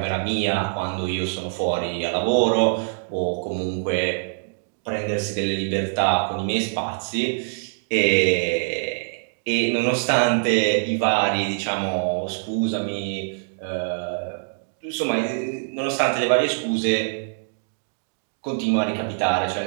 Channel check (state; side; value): silent; left; digital silence